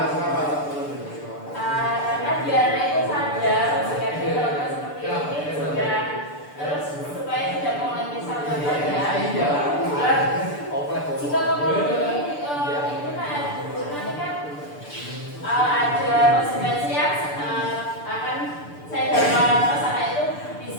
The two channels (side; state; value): right; late; 6.8 ms